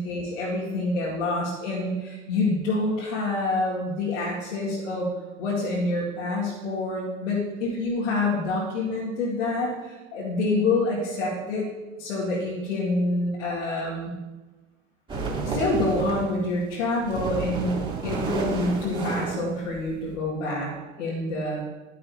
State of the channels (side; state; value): both; normal; correlation 0.37